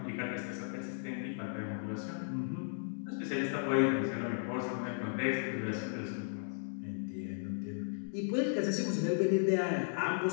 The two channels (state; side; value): silent; right; digital silence